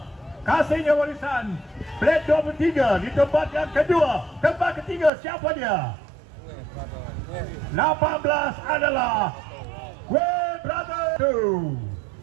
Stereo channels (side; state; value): left; drops out; at 5.1 s